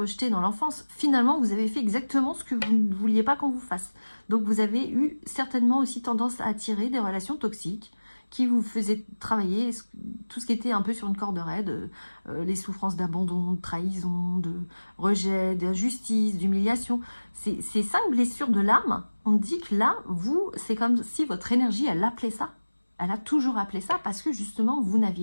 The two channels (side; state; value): both; inverted; correlation -1.00